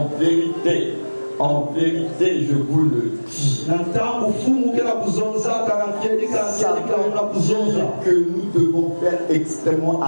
vérité, je vous le dis. Ça veut dire que nous devons faire extrêmement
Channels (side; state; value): both; inverted; correlation -1.00